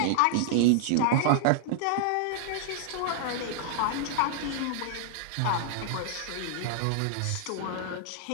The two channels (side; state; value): both; different; correlation -0.01